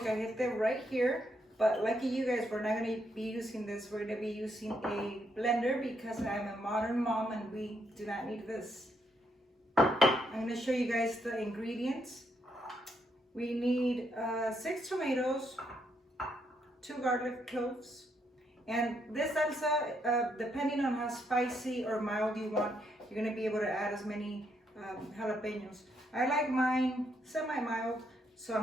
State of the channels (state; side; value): normal; both; correlation 0.76